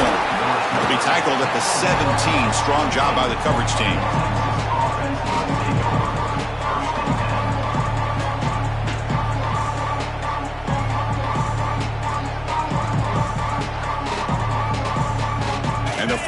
He'll be tackled at the 17. Strong job by the coverage team. And the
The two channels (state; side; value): identical; both; correlation 1.00